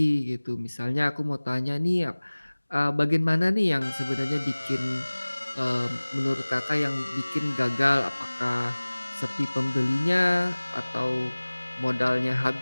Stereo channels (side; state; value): both; inverted; correlation -1.00